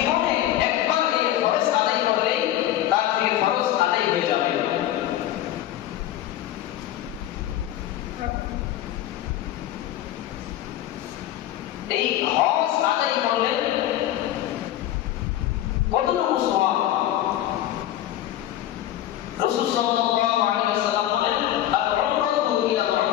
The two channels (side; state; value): right; quieter; 12.9 dB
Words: একবার এই ফরজ আদায় করলেই তার থেকে ফরজ আদায় হয়ে যাবে। এই হজ আদায় করলে কতটুকু সওয়াব? রাসূল সাল্লাল্লাহু আলাইহি ওয়াসাল্লাম বলেন, আল-উমরাতু ইলা